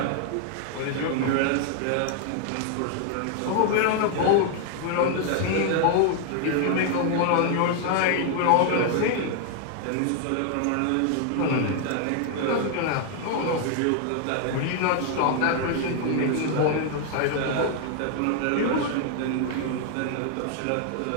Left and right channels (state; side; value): different; both; correlation 0.00